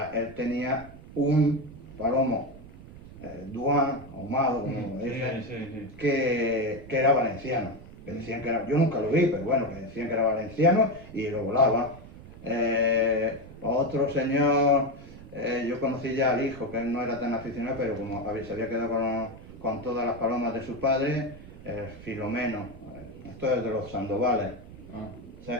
tenía un palomo Duan, ahumado, como dicen, que era valenciano. Que decían que era, yo nunca lo vi, pero bueno, que decían que era valenciano y lo volaba. Otro señor, yo conocí ya al hijo, que él no era tan aficionado, pero como se había quedado con todas las palomas de su padre, Filomeno. Esto es de los Sandovales.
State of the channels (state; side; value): noise; right; rumble, 17 dB below the sound